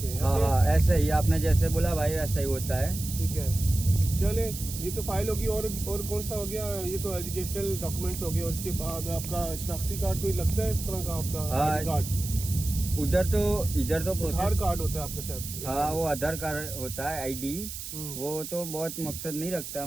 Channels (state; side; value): noise; right; hiss, 9 dB below the sound